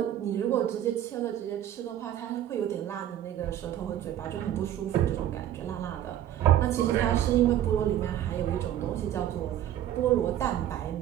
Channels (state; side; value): quieter; left; 11.6 dB